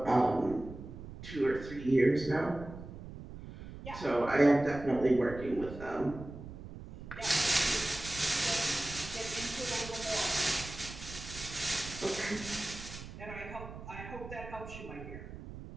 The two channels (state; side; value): noise; right; rumble, 12 dB below the sound